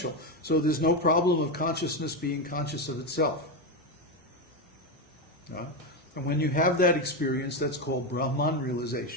so there's no problem of consciousness being conscious of itself. And when you have that experience, that's called Brahman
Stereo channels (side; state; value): both; normal; correlation 0.11